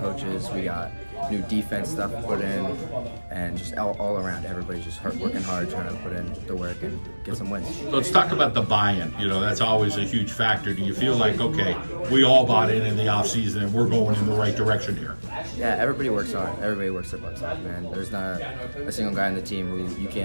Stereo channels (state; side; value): inverted; both; correlation -1.00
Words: we got new defense stuff put in, and just all around, everybody's just working hard, trying to put in the work and get some wins. Let's talk about the buy-in. You know, that's always a huge factor. Do you feel like, okay, we all bought in the offseason and we're going in the right direction here? Yeah, everybody works hard. Everybody works their butts off, man. There's not a single guy on the team who you